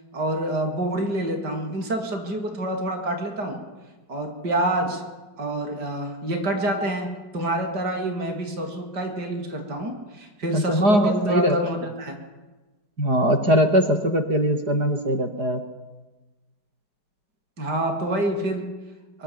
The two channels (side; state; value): left; late; 5.0 ms